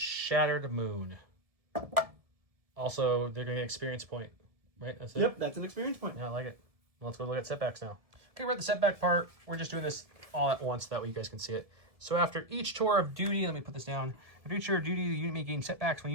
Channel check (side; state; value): left; late; 1.7 ms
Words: Moon. Also, they're going to get an experience point. Right? That's it? Yep, that's an experience point. Yeah, I like it. Well, let's go look at setbacks now. Okay, we're at the setback part. We're just doing this all at once. That way you guys can see it. So after each tour of duty, let me put this down. After each tour of duty, the unit may gain setbacks. When a